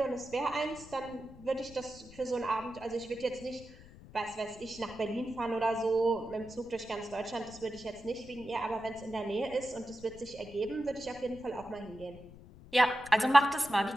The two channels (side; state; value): left; noise; rumble, 19 dB below the sound